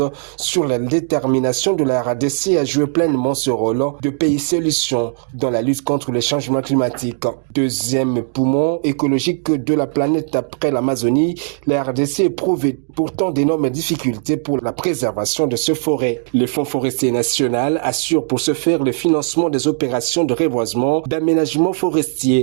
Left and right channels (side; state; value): left; silent; 67 dB below the other